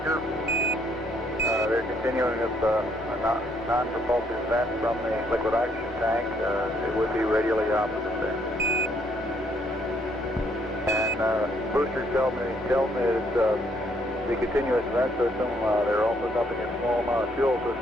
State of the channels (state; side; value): normal; both; correlation 0.69